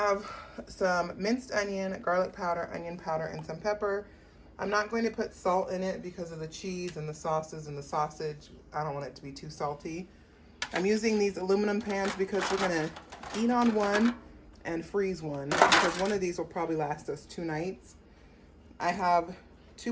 some minced onion, garlic powder, onion powder, and some pepper. I'm not going to put salt in it because of the cheese and the sauces and the sausage. I don't want it to be too salty. I'm using these aluminum pans because we're gonna eat on one and freeze one because one of these will probably last us 2 nights. I have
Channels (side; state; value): both; identical; correlation 1.00